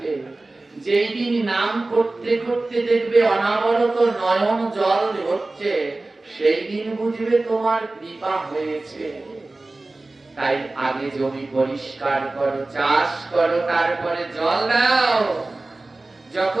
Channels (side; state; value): left; quieter; 3.1 dB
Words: যেই দিন নাম করতে করতে দেখবে অনাবরত নয়ন জল হচ্ছে, সেই দিন বুঝবে তোমার কৃপা হয়েছে। তাই আগে জমি পরিষ্কার করো, চাষ করো, তারপরে জল দাও।